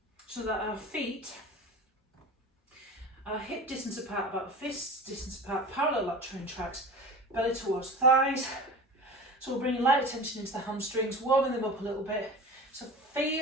so that our feet are hip distance apart, about fist distance apart, parallel lateral tracks, belly towards thighs. So we'll bring light attention into the hamstrings, warming them up a little bit. So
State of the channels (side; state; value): both; normal; correlation 0.35